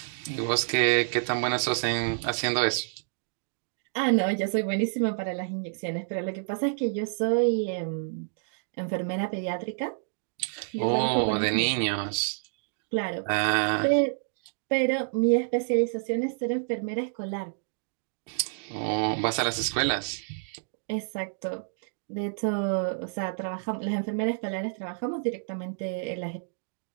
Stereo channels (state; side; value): silent; left; digital silence